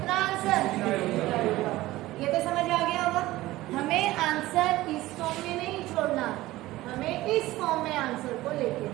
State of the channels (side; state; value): left; quieter; 17.4 dB